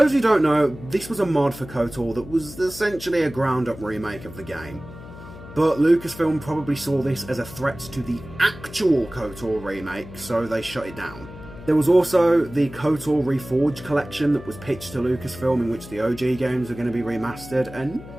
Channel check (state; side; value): noise; left; hum, 15 dB below the sound